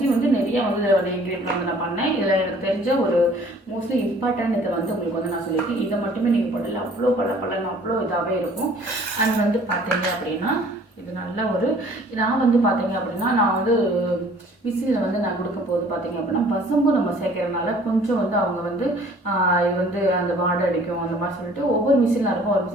நிறைய இதில் இன்க்ரீடியன்ட் நான் பண்ணேன். இதில் எனக்கு தெரிஞ்ச ஒரு மோஸ்ட்லி இம்பார்ட்டன்ட் இதை உங்களுக்கு நான் சொல்லியிருக்கேன். இதை மட்டுமே நீங்கள் போடல, அவ்வளோ பளபளன்னு அவ்வளோ இதாகவே இருக்கும். அண்ட் பார்த்தீங்க அப்படின்னா இது நல்ல ஒரு நான் பார்த்தீங்க அப்படின்னா நான் மிஷினில் நான் கொடுக்கும் போது பார்த்தீங்க அப்படின்னா பசும்பு நம்ம சேர்க்கறதுனால கொஞ்சம் அவங்க இது அந்த வாடை அடிக்கும் அந்த மாதிரி சொல்லிட்டு ஒவ்வொரு மிஷினில் இருக்கும், ஒரு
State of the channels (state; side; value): normal; both; correlation 0.53